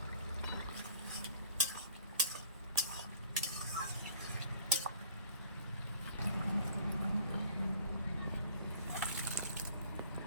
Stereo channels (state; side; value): inverted; both; correlation -0.53